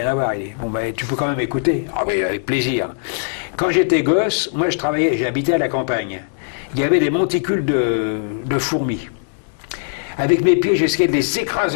à voir. Il dit, bon, tu peux quand même écouter. Ah oui, avec plaisir. Quand j'étais gosse, moi, j'habitais à la campagne. Il y avait des monticules de fourmis. Avec mes pieds, j'essayais de les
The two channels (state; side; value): silent; right; digital silence